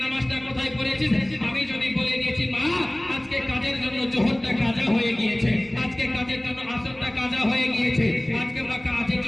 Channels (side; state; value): right; noise; rumble, 26 dB below the sound